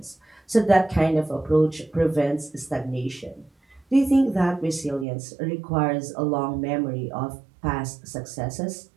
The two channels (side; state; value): left; drops out; at 5.1 s